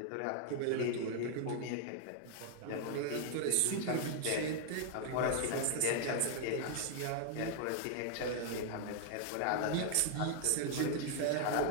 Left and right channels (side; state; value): both; different; correlation 0.00